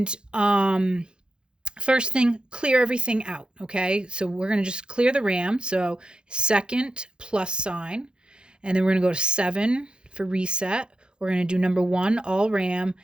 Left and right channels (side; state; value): left; late; 0.050 ms